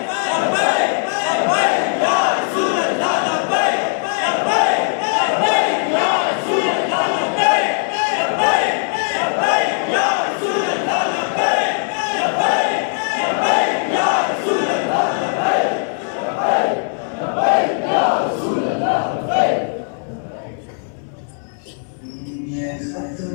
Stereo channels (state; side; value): silent; right; 60 dB below the other